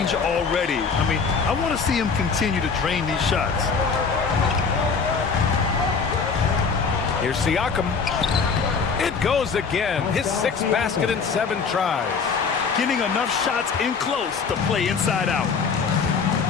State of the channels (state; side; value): quieter; right; 5.4 dB